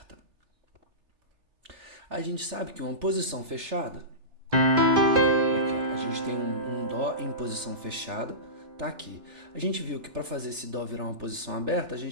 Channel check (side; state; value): left; late; 3.3 ms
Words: A gente sabe que uma posição fechada, aqui, ó, a gente tem um Dó em posição fechada, tá aqui. A gente viu que para fazer esse Dó virar uma posição aberta, a